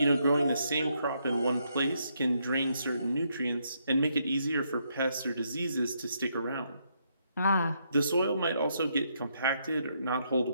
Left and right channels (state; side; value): inverted; both; correlation -0.76